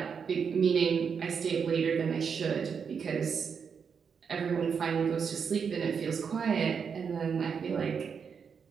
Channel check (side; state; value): left; quieter; 6.4 dB